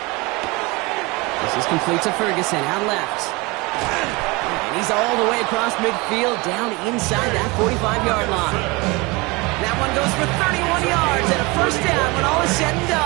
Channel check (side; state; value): left; quieter; 25.1 dB